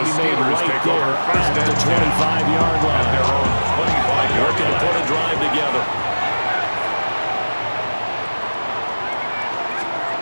be made right there at the 25-yard line. Working to put a drive together.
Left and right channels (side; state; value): both; inverted; correlation -1.00